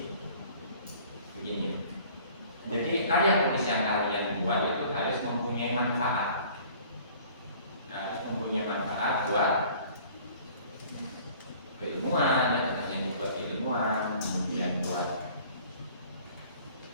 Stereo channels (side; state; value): both; inverted; correlation -0.51